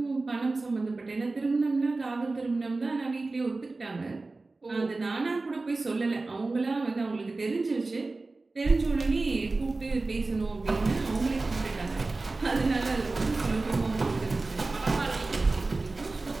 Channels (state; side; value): quieter; left; 3.4 dB